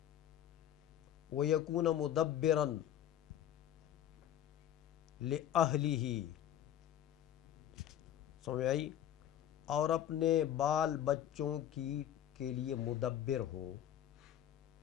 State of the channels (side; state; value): right; quieter; 10.9 dB